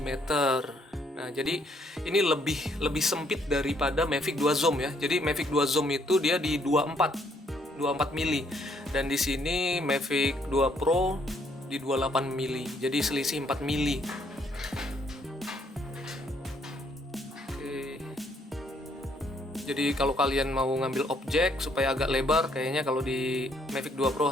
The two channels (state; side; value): normal; both; correlation 0.69